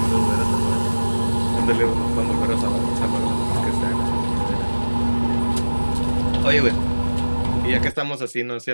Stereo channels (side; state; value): both; inverted; correlation -1.00